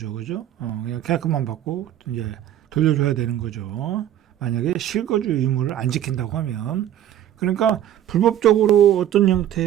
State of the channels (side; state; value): left; quieter; 11.4 dB